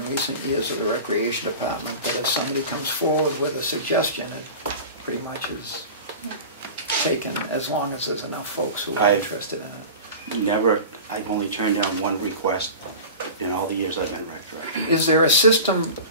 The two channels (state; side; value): inverted; both; correlation -0.34